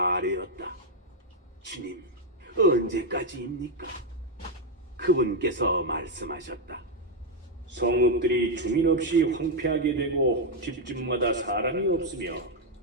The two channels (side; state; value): both; normal; correlation 0.02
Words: 아뢰었다. 주님, 언제까지입니까? 그분께서 말씀하셨다. 성읍들이 주민 없이 황폐하게 되고 집집마다 사람이 없으며